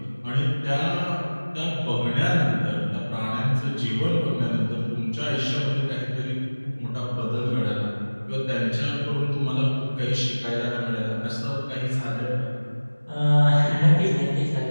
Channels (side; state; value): both; inverted; correlation -1.00